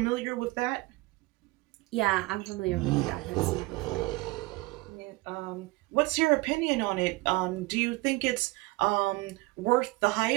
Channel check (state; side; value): quieter; left; 21.9 dB